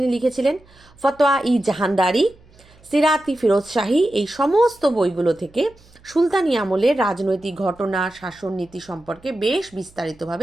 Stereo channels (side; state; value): right; noise; hum, 28 dB below the sound